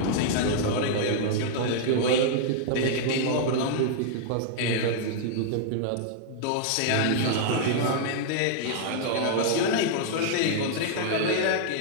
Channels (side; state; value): both; different; correlation -0.01